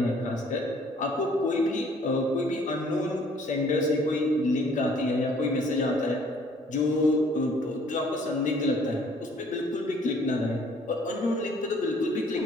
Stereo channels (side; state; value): both; normal; correlation 0.58